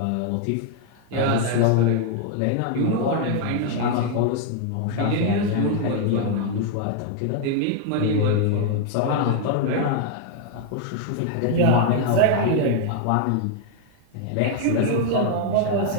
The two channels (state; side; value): different; both; correlation 0.00